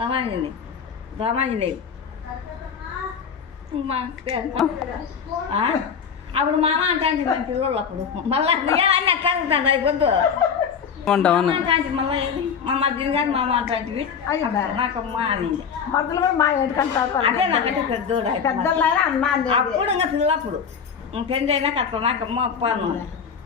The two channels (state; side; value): quieter; right; 6.8 dB